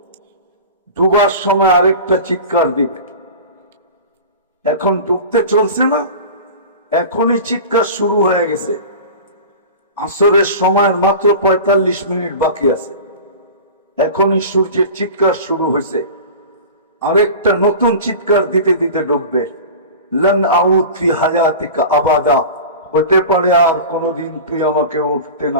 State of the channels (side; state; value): both; inverted; correlation -0.34